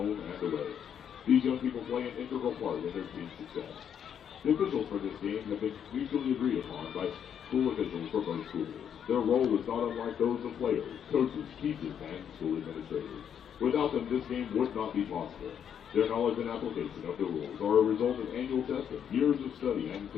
and away. These young people play an integral part in their team's success. The officials for this game have been mutually agreed upon by school officials for both schools. Their role is not unlike those of players, coaches, teachers, and school administrators. Without them, this game would not be possible. Their knowledge and application of the rules are a result of annual testing, years of study, and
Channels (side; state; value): right; quieter; 8.6 dB